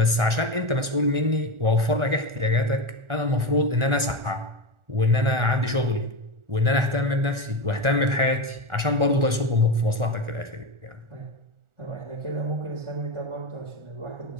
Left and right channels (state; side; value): late; left; 1.4 ms